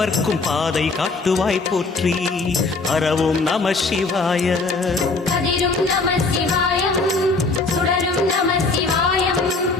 பாதை காட்டுவாய் போற்றி ஹரவோம் நம சிவாய கதிரும் நம சிவாயம் சுடரும் நம சிவாயம்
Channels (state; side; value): quieter; right; 3.8 dB